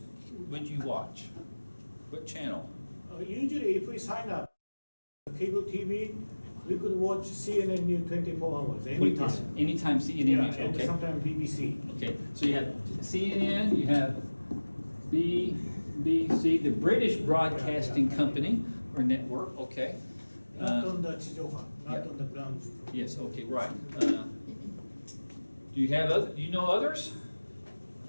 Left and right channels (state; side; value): inverted; both; correlation -1.00